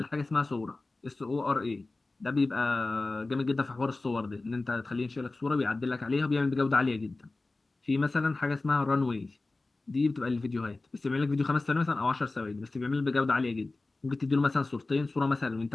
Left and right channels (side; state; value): right; quieter; 3.3 dB